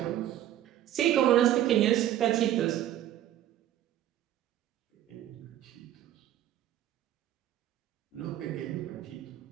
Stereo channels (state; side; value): quieter; left; 12.3 dB